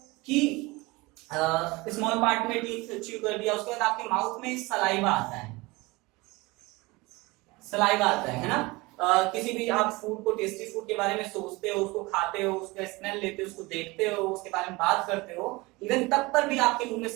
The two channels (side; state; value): left; quieter; 23.3 dB